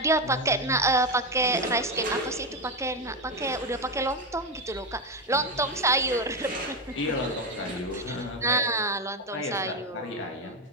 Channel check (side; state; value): both; normal; correlation 0.13